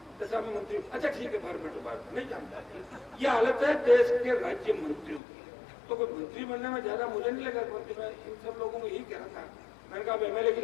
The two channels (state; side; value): drops out; right; at 5.2 s